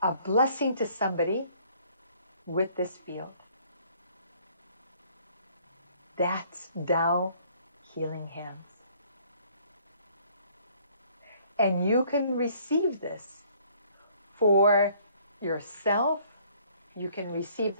a blessing to somebody with this field. That's Tao Healing Hands. And you can receive this for yourself. You can receive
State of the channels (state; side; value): inverted; both; correlation -0.60